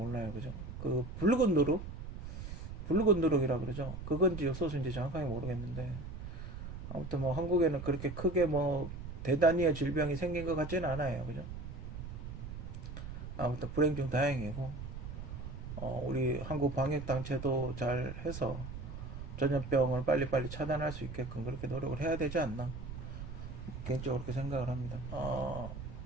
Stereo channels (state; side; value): noise; right; rumble, 8 dB below the sound